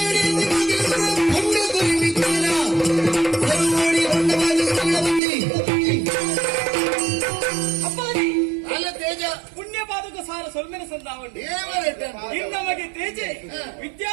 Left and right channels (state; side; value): drops out; left; at 5.2 s